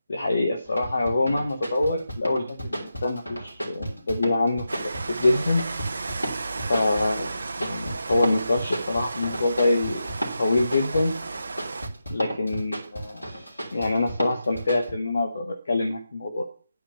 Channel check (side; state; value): both; inverted; correlation -0.88